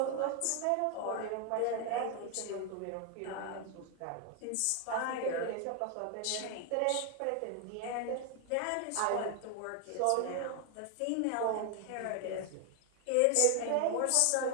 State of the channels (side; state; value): both; different; correlation 0.00